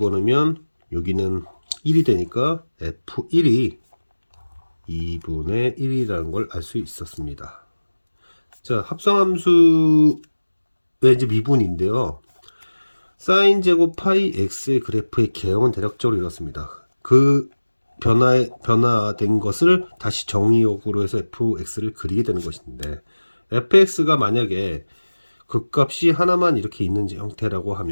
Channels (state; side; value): inverted; both; correlation -1.00